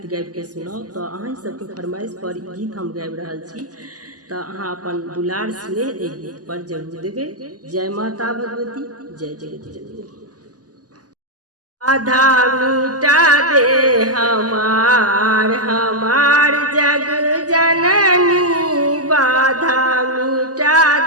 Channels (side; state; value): left; late; 0.67 ms